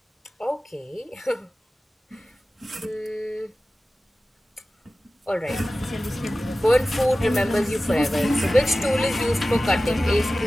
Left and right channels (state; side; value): normal; both; correlation 0.96